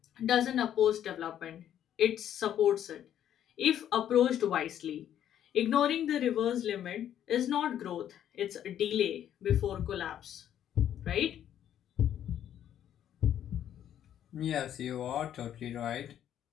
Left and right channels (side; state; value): right; quieter; 10.5 dB